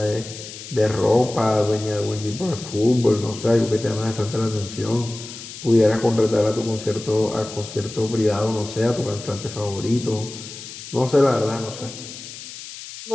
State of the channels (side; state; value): left; noise; hiss, 13 dB below the sound